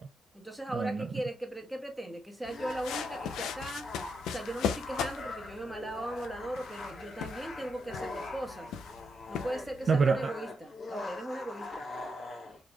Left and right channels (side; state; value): both; normal; correlation 0.81